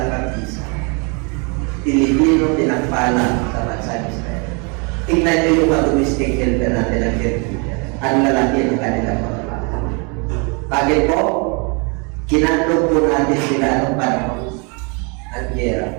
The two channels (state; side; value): quieter; left; 33.4 dB